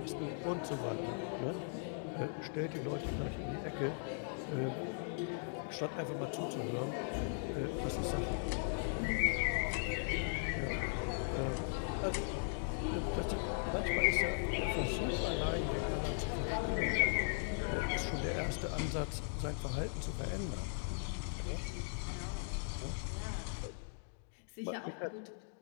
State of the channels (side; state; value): right; silent; digital silence